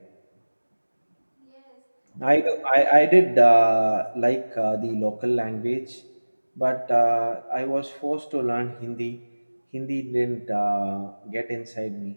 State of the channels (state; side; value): inverted; both; correlation -1.00